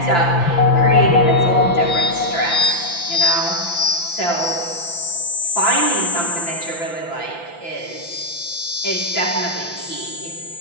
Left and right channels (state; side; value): late; right; 5.9 ms